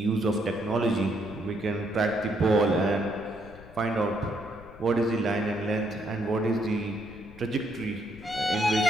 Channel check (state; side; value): noise; left; rumble, 19 dB below the sound